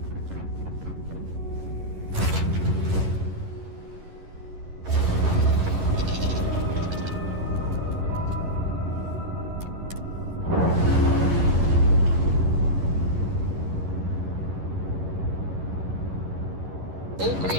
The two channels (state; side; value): late; left; 11 ms